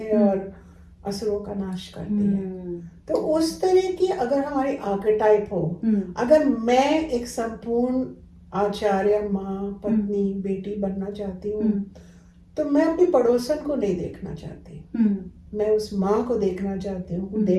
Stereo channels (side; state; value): both; identical; correlation 1.00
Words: और असुरों का नाश करती है. तो उस तरह की अगर हमारी आर्केटाइप हो, अगर मैं एक संपूर्ण आचार्य, माँ, पत्नी, बेटी बनना चाहती हूँ, तो मैं अपनी पड़ोसन को नहीं देखना चाहती. मैं उस माँ को देखना चाहती हूँ who